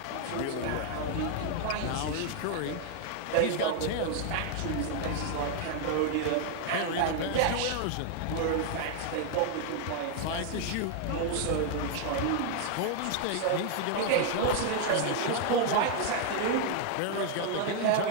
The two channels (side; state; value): both; different; correlation 0.00